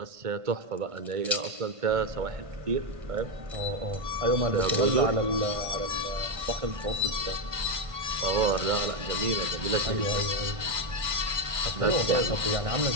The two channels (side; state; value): left; late; 1.5 ms